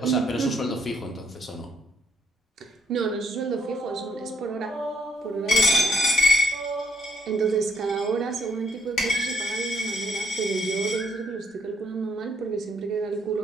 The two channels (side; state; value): both; normal; correlation 0.70